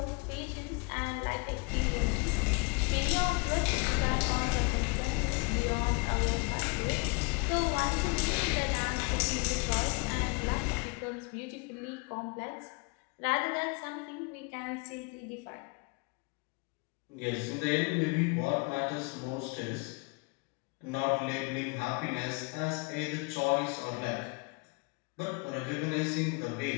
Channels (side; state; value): right; quieter; 30.9 dB